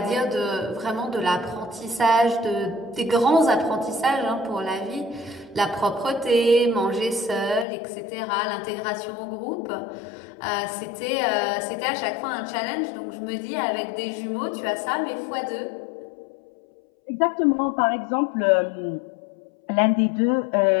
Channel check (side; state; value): right; drops out; at 7.7 s